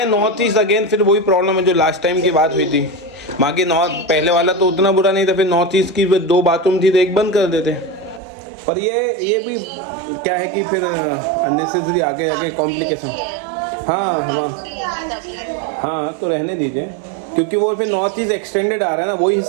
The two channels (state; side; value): drops out; left; at 8.2 s